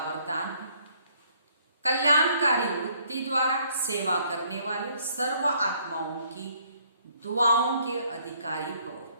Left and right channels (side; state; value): both; inverted; correlation -0.65